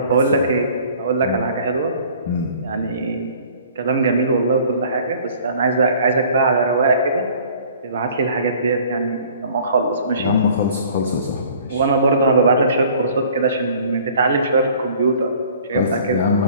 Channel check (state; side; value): inverted; both; correlation -0.52